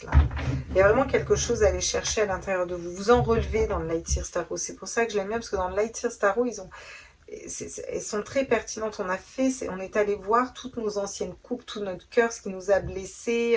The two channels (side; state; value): both; identical; correlation 1.00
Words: Là. Il y a vraiment quelque chose à aller chercher à l'intérieur de vous. Vous en relevez dans le Lightseers Tarot. C'est pour ça que je l'aime bien, parce que dans le Lightseers Tarot, elles sont très pertinentes. On est allé voir toutes nos anciennes coupes, tout notre cœur, ce qui nous a